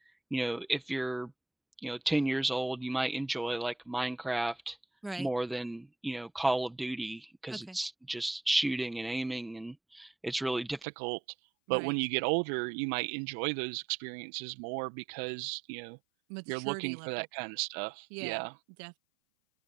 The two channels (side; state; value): left; drops out; at 10.9 s